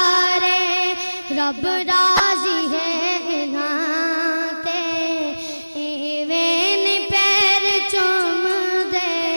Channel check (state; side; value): inverted; both; correlation -0.99